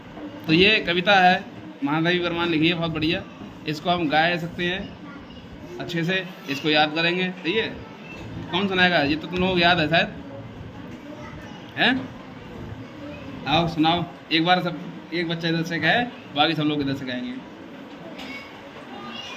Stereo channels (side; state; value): both; identical; correlation 1.00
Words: तो ये कविता है, महादेवी वर्मा लिखी है, बहुत बढ़िया। इसको हम गा सकते हैं अच्छे से, इसको याद करेंगे। सही है, कौन सुनाएगा? ये तो तुम लोगों को याद है शायद, हैं? आओ सुनाओ एक बार, सब एक बच्चा इधर से गाए, बाकी सब लोग इधर से गाएंगे।